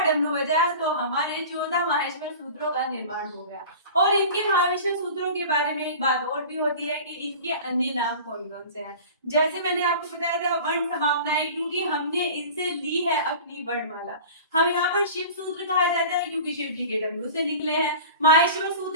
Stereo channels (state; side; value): inverted; both; correlation -0.38